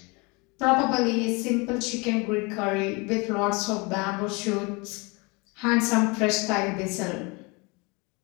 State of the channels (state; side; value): quieter; right; 28.3 dB